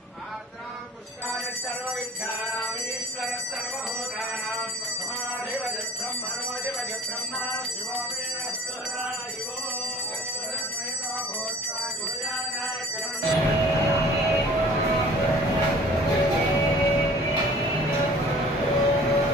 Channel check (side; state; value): both; normal; correlation 0.48